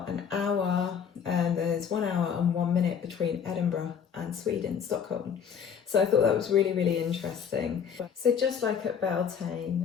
an hour, and there's 1 hour and 1 minute between Edinburgh and Sweden, Stockholm. So I thought that was really, really interesting. So just like at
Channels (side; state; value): right; quieter; 7.3 dB